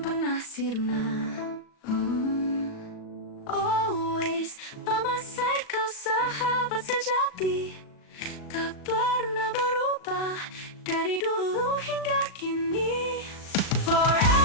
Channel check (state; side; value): late; right; 37 ms